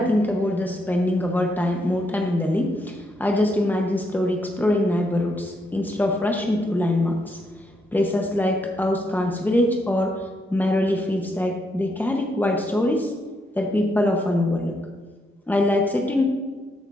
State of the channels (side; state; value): both; normal; correlation 0.77